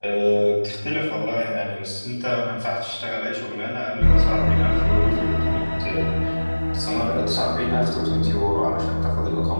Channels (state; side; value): inverted; both; correlation -1.00